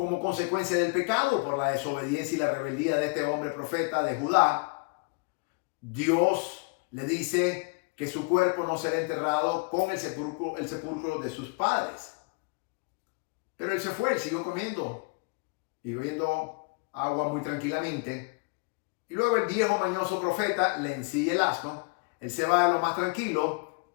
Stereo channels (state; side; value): quieter; right; 31.7 dB